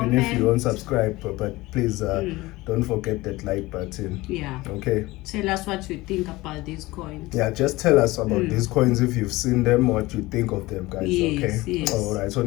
if you don't subscribe, but please don't forget that like button. Yeah. Okay. Tell us what you think about these coins. Yeah, just tell us about these coins if you've seen them, what you think of them, guys. Yes, okay. Yes. All right.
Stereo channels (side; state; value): right; quieter; 20.1 dB